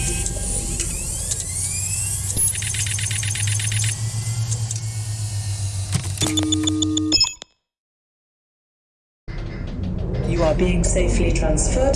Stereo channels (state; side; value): identical; both; correlation 1.00